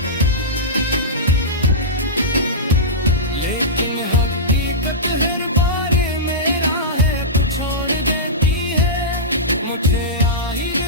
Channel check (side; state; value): both; normal; correlation -0.14